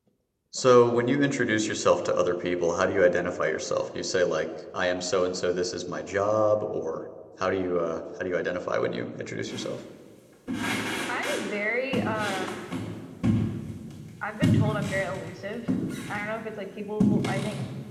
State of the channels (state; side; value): identical; both; correlation 1.00